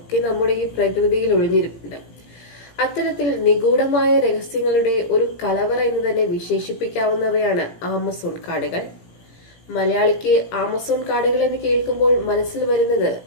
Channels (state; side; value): late; right; 18 ms